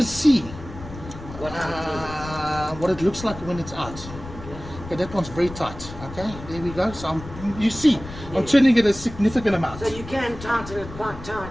see What what it looks like when it's out. Okay, that one's very tight. Okay, there we go. So you see, I'm turning it a significant amount. So you can tighten it quite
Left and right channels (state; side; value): noise; left; rumble, 13 dB below the sound